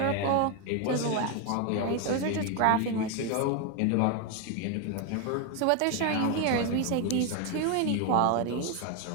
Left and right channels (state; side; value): different; both; correlation 0.01